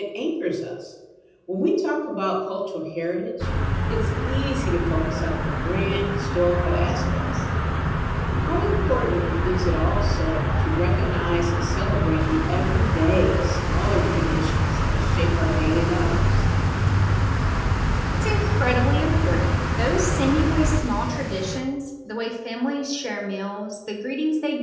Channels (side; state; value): both; identical; correlation 1.00